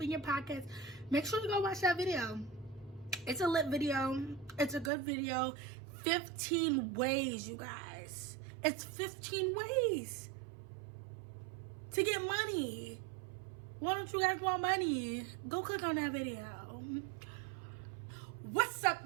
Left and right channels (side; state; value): left; drops out; at 4.9 s